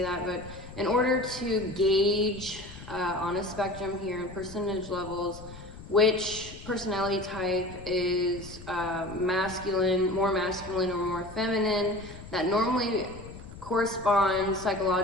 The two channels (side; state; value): left; noise; rumble, 15 dB below the sound